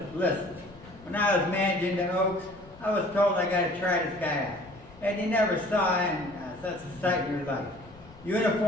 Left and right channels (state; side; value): noise; left; rumble, 22 dB below the sound